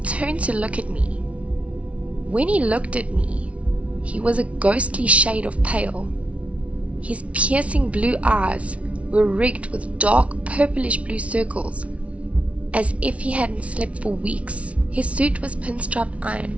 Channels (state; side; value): late; left; 0.063 ms